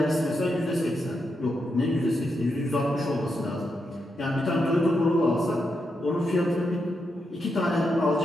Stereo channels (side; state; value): both; normal; correlation 0.84